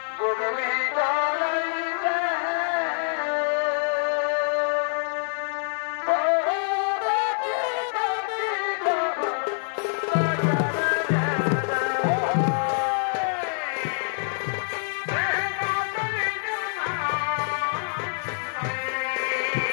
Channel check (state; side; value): silent; right; digital silence